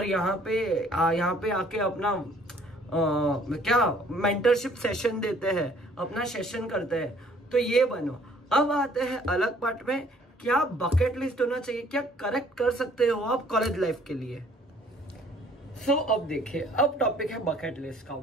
यहाँ पे आके अपना क्या मेंटरशिप सेशन देते हैं, अपना सेशन करते हैं। तो ये बनो। अब आते हैं अलग पार्ट में, क्या बकेट लिस्ट होना चाहिए, क्या करेक्ट कर सकते हो आप कॉलेज लाइफ के लिए। अब देखिए, अब टॉपिक है बकेट लिस्ट का।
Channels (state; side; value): normal; both; correlation 0.58